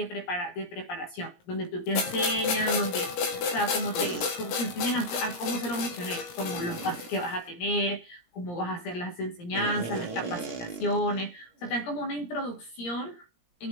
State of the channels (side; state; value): right; late; 17 ms